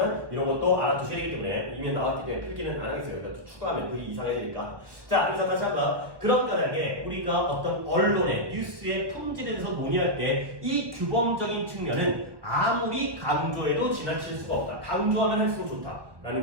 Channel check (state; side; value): late; left; 1.2 ms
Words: 이런 것도 알아두셔야 되기 때문에 이미 나왔기 때문에 필기는 안 하겠어요. 그러니까 추가하면 글이 이상해지니까. 자, 그래서 다시 한번 그런 까닭에 우리가 어떤 언론의 뉴스의 품질에 대해서 논의할 때 이 규범적인 측면은 아무리 강조해도 지나칠 수가 없다. 강조하면 할수록 좋다.